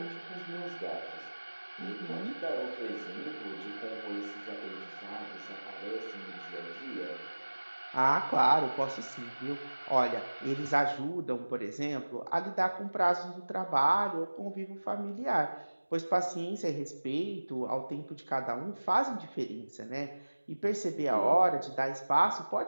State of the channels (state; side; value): inverted; both; correlation -1.00